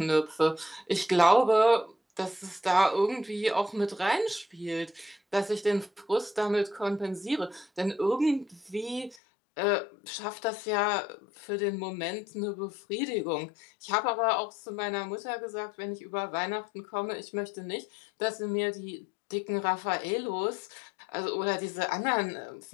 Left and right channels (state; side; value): drops out; right; at 9.2 s